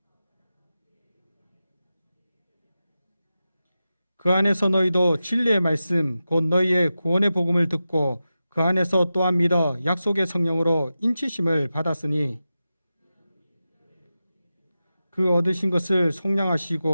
그 안에서 너희도 진리의 말씀 곧 너희의 구원의 복음을 듣고 그 안에서 또한 믿어 약속의 성령으로 인치심을 받았으니 그 얻으신 것을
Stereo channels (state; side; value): inverted; both; correlation -0.92